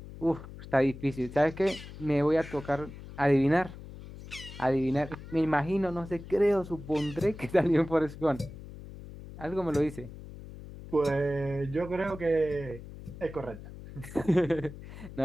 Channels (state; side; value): noise; left; hum, 14 dB below the sound